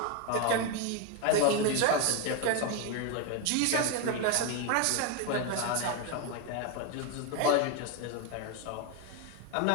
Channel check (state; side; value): different; both; correlation 0.02